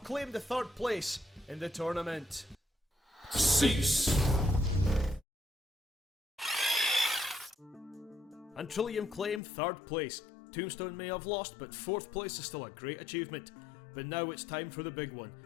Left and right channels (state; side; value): drops out; right; at 9.4 s